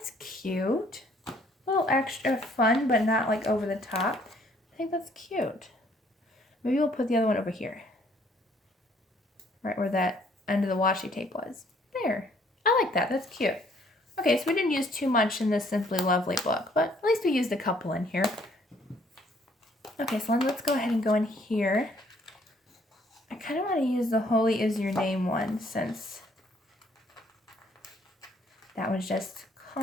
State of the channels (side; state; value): both; normal; correlation 0.63